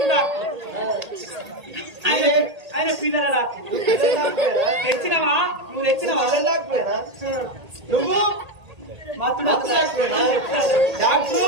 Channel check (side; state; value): left; late; 1.8 ms